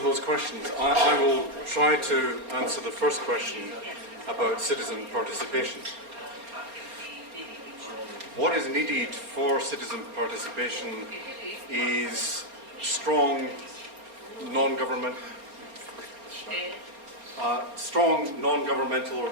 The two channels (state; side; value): late; left; 4.3 ms